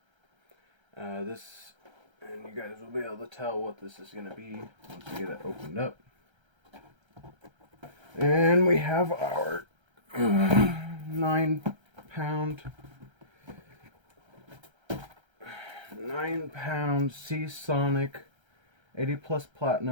And you guys will be able to tell what this is going to be once we get it opened up. And we have our 9 pound 9 pound Seasonic 80 plus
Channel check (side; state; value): left; late; 1.3 ms